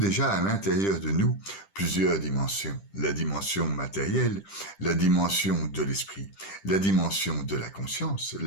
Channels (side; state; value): right; late; 10 ms